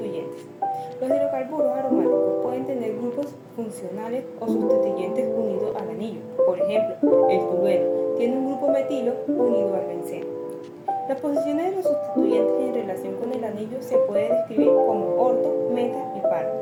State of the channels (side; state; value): both; identical; correlation 1.00